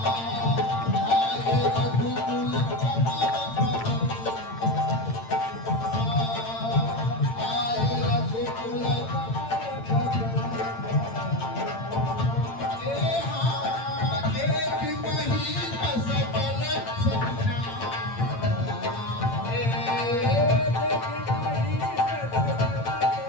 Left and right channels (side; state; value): right; late; 8.9 ms